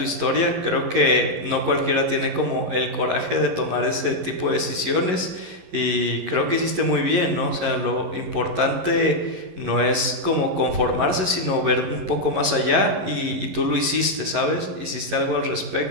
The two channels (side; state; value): left; late; 11 ms